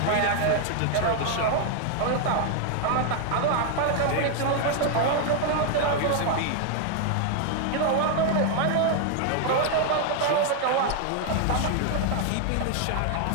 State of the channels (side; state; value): both; different; correlation 0.00